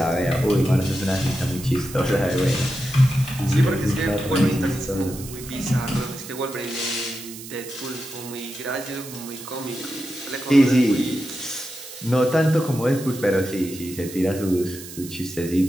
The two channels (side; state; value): right; noise; hiss, 14 dB below the sound